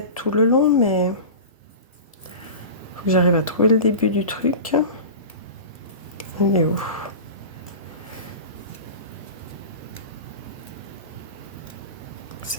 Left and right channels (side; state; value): both; inverted; correlation -0.31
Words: tout le long, mais... faut que j'arrive à trouver le début du truc. Il est où?